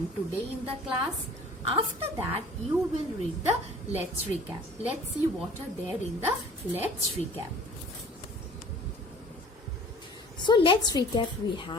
today in the class. After that you will read the let's recap. Let's see what are there in the let's recap. So let's recap. We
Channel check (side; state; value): both; normal; correlation 0.48